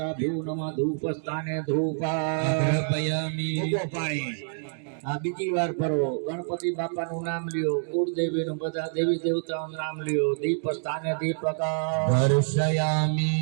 ભ્યુ નમઃ ધૂપ સ્થાને ધૂપામી પાણી. આ બીજી વાર ફરવો, ગણપતિ બાપાનું નામ લ્યો, કુળદેવીનું બધા દેવી દેવતાઓનું નામ લ્યો, દીપ સ્થાને દીપક દર્શયામી.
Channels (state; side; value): silent; left; digital silence